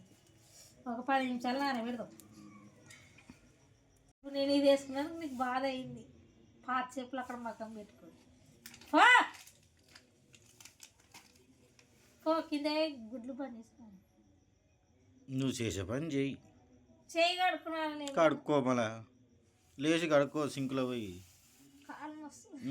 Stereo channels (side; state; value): both; identical; correlation 1.00